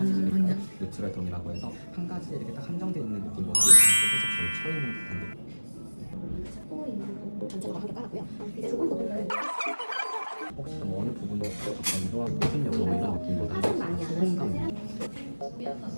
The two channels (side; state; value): both; inverted; correlation -1.00